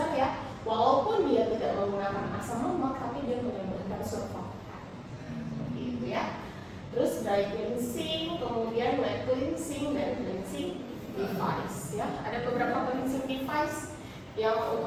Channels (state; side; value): identical; both; correlation 1.00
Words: ya, walaupun dia tidak menggunakan asam lemak, tapi dia menambahkan surfaktan, gitu ya. Terus dry cleansing, kemudian wet cleansing dan cleansing device ya. Ada beberapa cleansing device yang